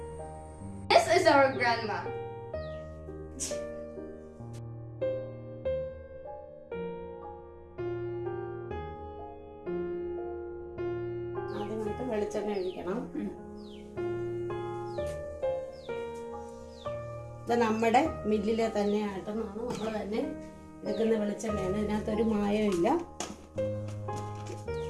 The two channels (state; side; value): identical; both; correlation 1.00